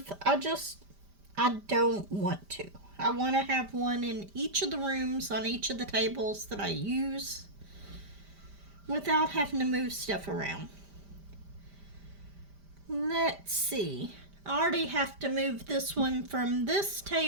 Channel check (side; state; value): left; late; 5.0 ms